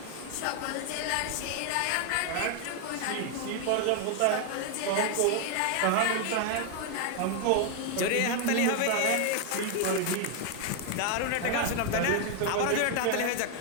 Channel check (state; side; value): different; both; correlation 0.00